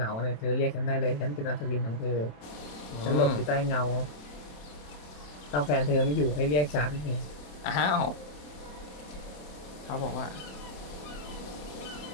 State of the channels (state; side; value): late; right; 27 ms